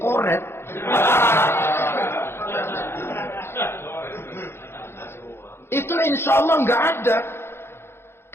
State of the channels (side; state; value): right; late; 0.12 ms